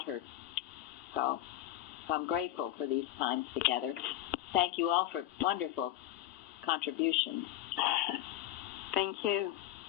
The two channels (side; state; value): right; quieter; 13.8 dB